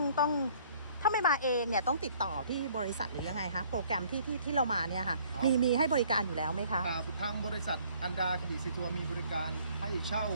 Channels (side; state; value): both; inverted; correlation -0.58